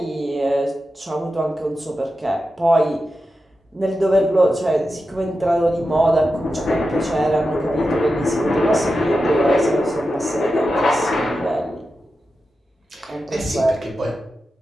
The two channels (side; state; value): both; normal; correlation 0.90